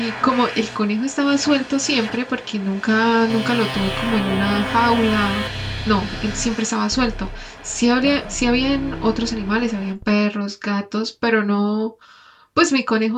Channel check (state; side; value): identical; both; correlation 1.00